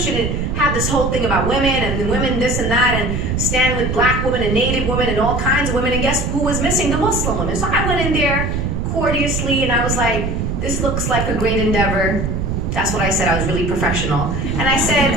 it had this whole thing about women and women this and that, and stand with black women and native women and all kinds of women. And guess who was missing? The Muslim women. So I went in there courteously and I was like, this looks like a great endeavor. That's what I said. I was really professional. And I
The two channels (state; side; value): noise; right; rumble, 1 dB below the sound